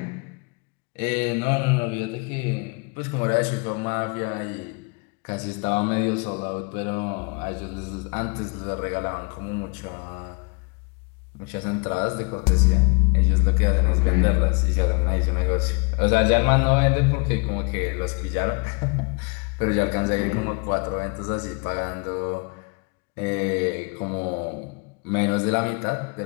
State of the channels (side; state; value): right; quieter; 31.5 dB